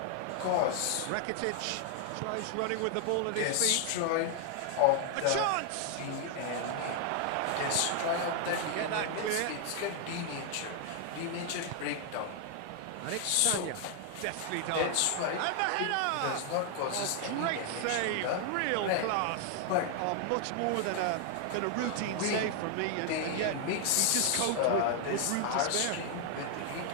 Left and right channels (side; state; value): both; different; correlation 0.00